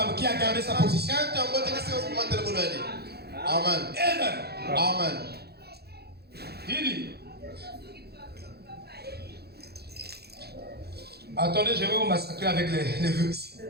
qui a gardé sa position. Amen. Amen. Amen. Il dit. Attendez, je vais vous massacrer avec les vœux ici.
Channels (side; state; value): left; late; 0.47 ms